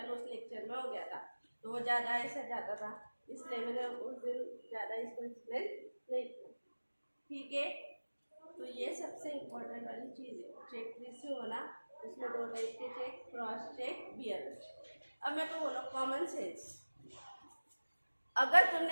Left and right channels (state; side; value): inverted; both; correlation -1.00